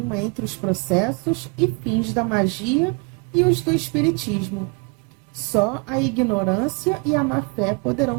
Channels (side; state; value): left; quieter; 32.2 dB